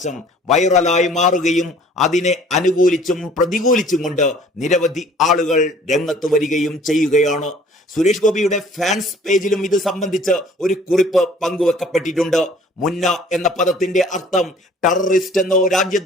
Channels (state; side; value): normal; both; correlation 0.53